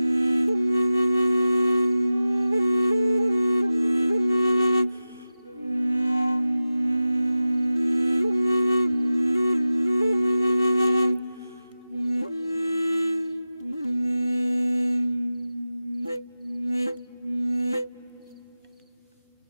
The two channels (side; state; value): both; inverted; correlation -0.95